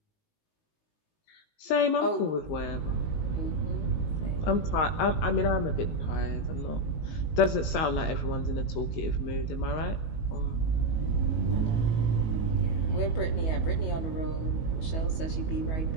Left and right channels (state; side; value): late; right; 19 ms